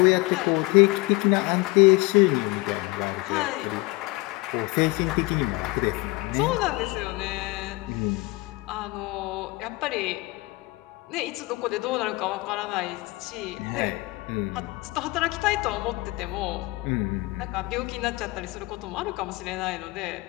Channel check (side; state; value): right; quieter; 22.7 dB